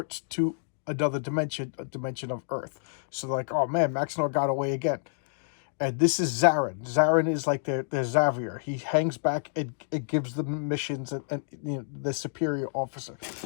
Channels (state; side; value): silent; right; digital silence